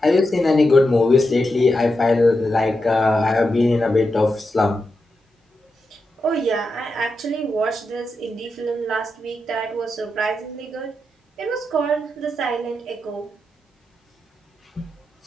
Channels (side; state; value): both; normal; correlation 0.87